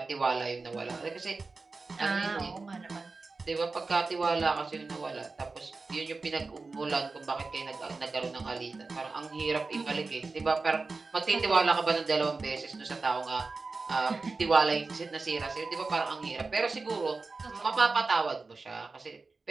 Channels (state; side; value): quieter; left; 3.9 dB